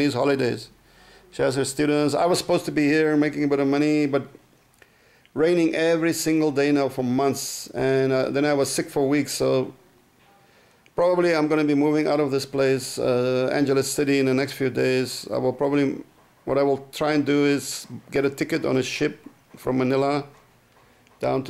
holidays. She has her students. I was supposed to be here making a bit of money, but raining every single day now for months. And then I was sick for weeks. So probably I'm going to be moving out of this place, Angeles City, in the next few days. What I will try and do is get a ticket on a ship from Manila down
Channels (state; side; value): identical; both; correlation 1.00